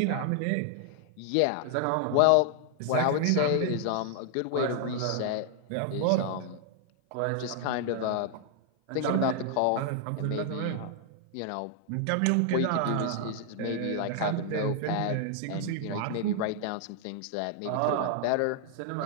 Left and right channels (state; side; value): different; both; correlation 0.00